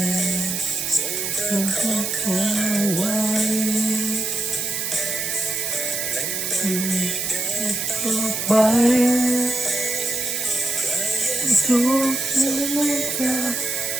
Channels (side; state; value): right; noise; hiss, 2 dB below the sound